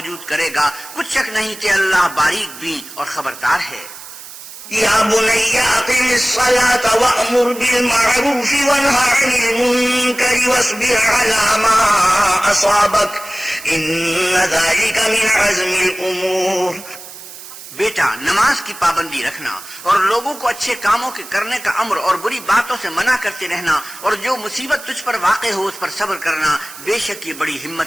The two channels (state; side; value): noise; right; hiss, 15 dB below the sound